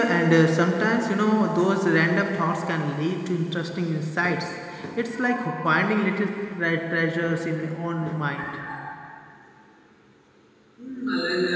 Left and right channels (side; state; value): both; identical; correlation 1.00